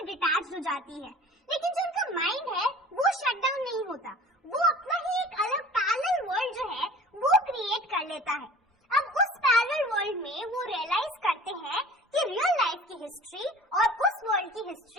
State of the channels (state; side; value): normal; both; correlation 0.44